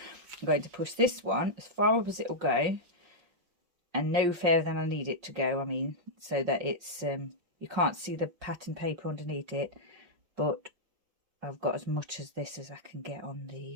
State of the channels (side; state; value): left; late; 5.7 ms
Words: going to push this one as far up as it will go, and no further than I need it to go. I mean, so that it's you can't see the pattern paper underneath it, but I've got as much as this as I can get on